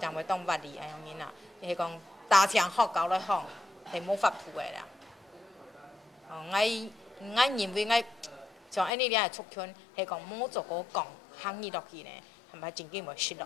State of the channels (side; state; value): right; drops out; at 8.9 s